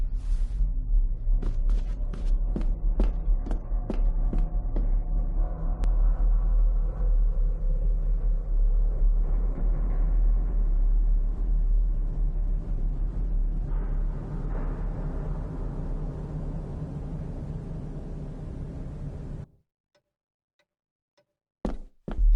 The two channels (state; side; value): identical; both; correlation 1.00